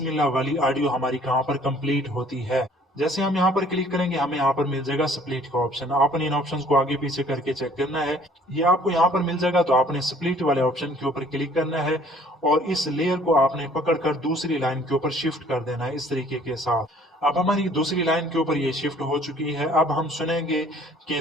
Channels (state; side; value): normal; both; correlation 0.56